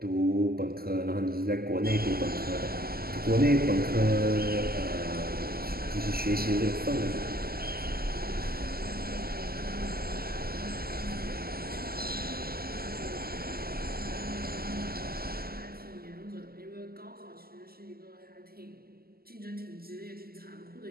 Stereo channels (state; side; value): late; left; 0.44 ms